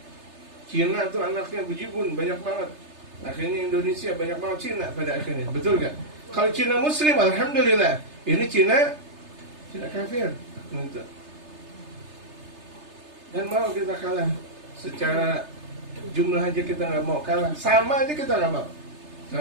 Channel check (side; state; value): left; late; 3.3 ms